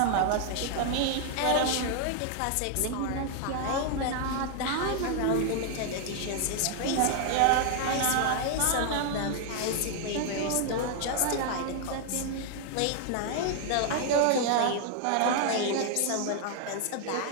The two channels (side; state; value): both; different; correlation 0.00